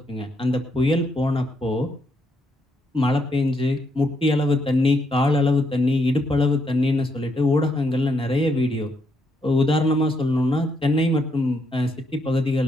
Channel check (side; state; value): both; normal; correlation 0.76